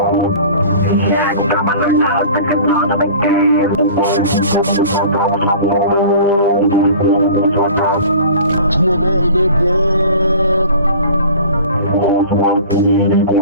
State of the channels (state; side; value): inverted; both; correlation -0.43